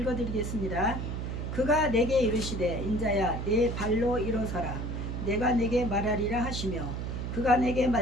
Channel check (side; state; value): right; noise; hum, 4 dB below the sound